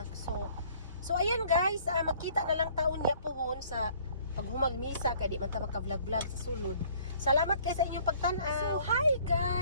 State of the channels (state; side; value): inverted; both; correlation -0.57